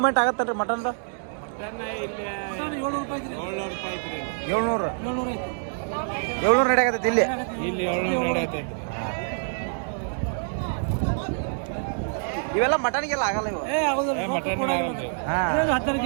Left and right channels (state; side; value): silent; left; 61 dB below the other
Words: ಆಗತ್ತಲ್ರಿ ಮಟನ್? 700 ನಡೆಯಾಗತ್ತೈತಿ ಇಲ್ಲಿ. 700 ಇವೆಲ್ಲ ಮಟನ್ಗೆಲ್ಲ ಆಗಲ್ಲ ಇವು. 12